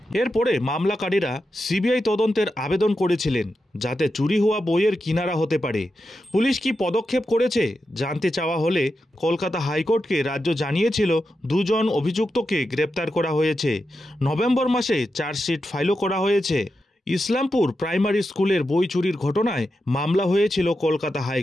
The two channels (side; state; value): both; normal; correlation 0.88